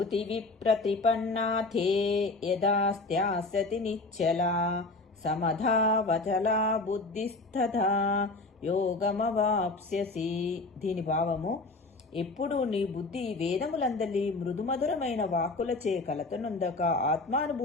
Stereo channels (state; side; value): quieter; right; 3.3 dB